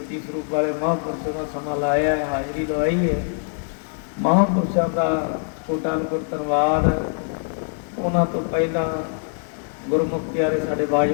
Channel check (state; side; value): silent; right; digital silence